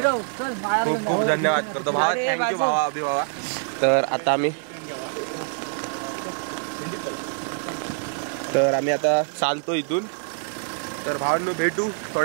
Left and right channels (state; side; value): silent; left; 62 dB below the other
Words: चल. खूप धन्यवाद करतो भावा. थँक्यू भावा अभि भावा. तर आम्ही आता चालतो इथून. तर भावांनो भेटू